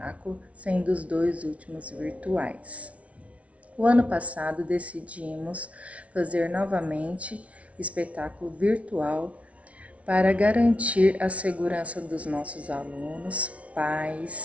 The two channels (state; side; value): late; left; 0.064 ms